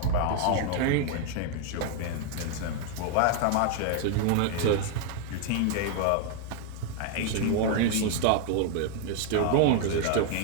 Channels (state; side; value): different; both; correlation 0.00